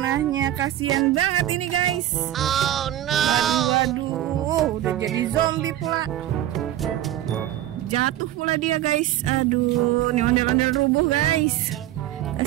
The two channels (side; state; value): left; quieter; 13.3 dB